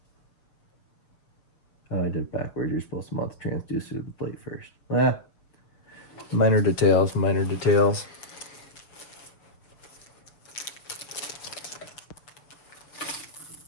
oh, I did it backwards. You're supposed to mount the transducer to the plate first. Well, minor details, minor details.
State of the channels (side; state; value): right; late; 6.8 ms